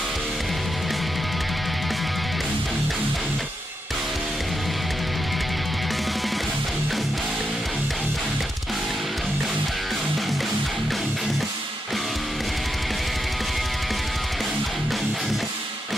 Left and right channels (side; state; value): both; normal; correlation 0.84